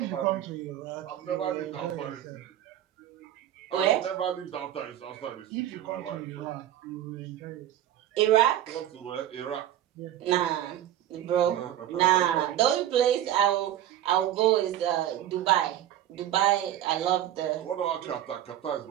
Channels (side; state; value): left; quieter; 11.9 dB